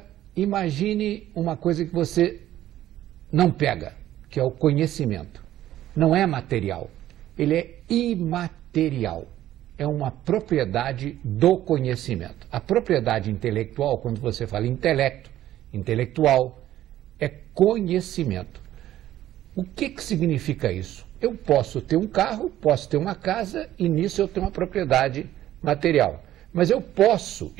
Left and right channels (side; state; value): left; quieter; 13.2 dB